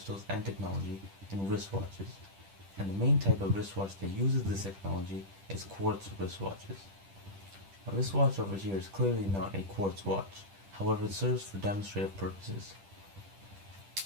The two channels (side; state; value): left; late; 10 ms